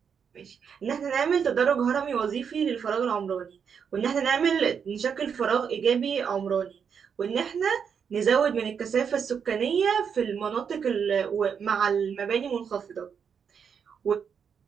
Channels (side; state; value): left; quieter; 7.0 dB